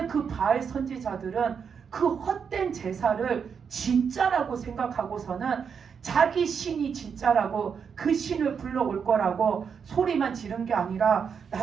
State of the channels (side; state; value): left; quieter; 6.6 dB